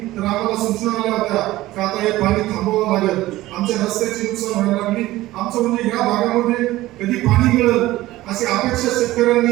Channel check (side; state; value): left; quieter; 16.8 dB